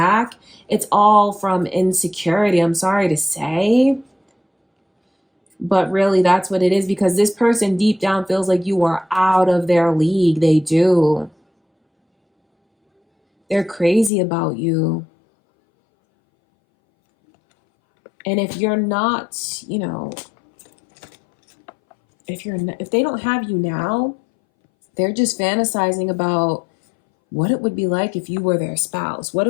It's all from insecurity, I'm sorry to say. But really, that's what it is, because this person deep down feels like you are out of their league. They do. They're crazy about you. And if you're not, you know, if they don't have you now, they're just fantasizing about what it would be like if you were their spouse, what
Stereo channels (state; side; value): drops out; right; at 14.1 s